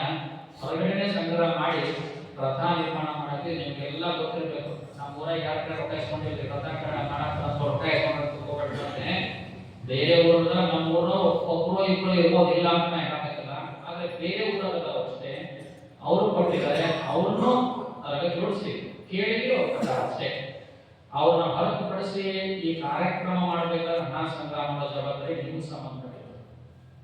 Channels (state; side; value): identical; both; correlation 1.00